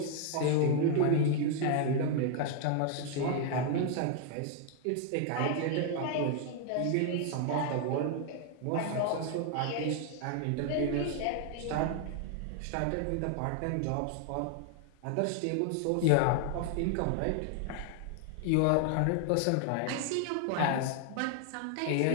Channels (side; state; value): both; different; correlation 0.00